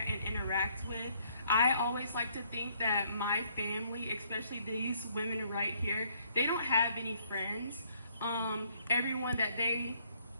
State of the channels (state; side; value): inverted; both; correlation -0.67